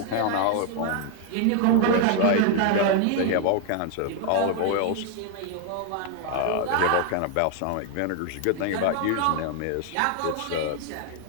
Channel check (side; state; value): both; different; correlation 0.00